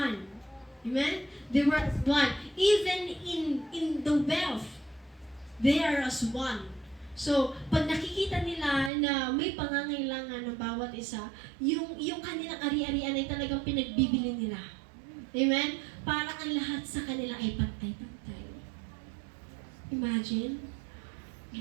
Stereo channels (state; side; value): drops out; left; at 8.9 s